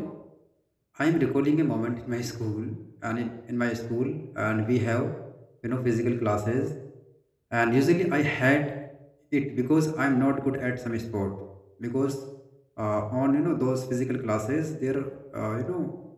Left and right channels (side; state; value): both; identical; correlation 1.00